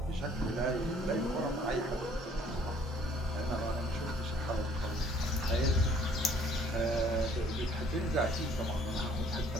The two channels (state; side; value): normal; both; correlation 0.58